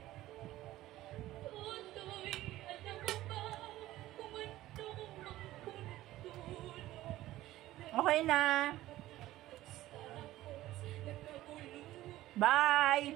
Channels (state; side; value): quieter; left; 15.6 dB